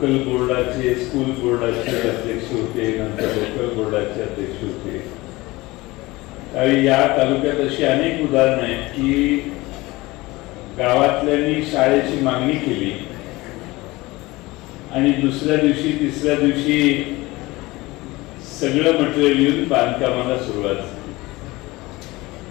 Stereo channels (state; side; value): quieter; right; 20.9 dB